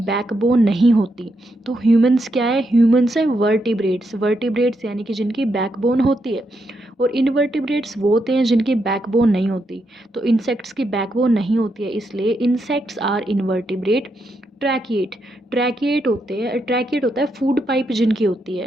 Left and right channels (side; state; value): both; normal; correlation 0.81